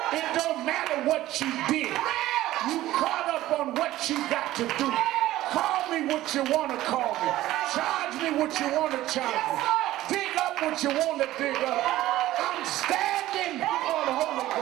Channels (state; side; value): quieter; left; 15.4 dB